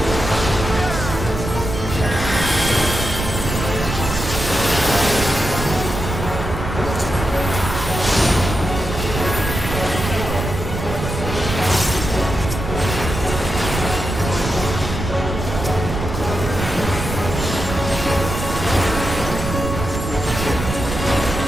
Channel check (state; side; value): noise; right; rumble, 5 dB below the sound